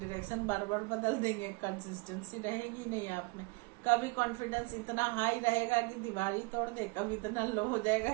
बार बार बदल देंगे, कंसिस्टेंसी रहेगी नहीं आप में। कभी कॉन्फिडेंस इतना हाई रहेगा कि दीवार ही तोड़ दे, कभी इतना लो हो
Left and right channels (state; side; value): quieter; left; 27.2 dB